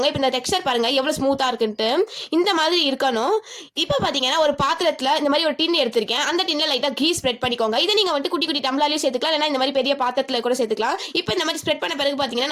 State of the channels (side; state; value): both; identical; correlation 1.00